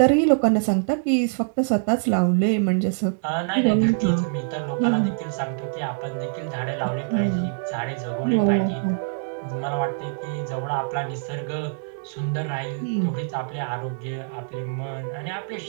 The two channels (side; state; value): left; silent; digital silence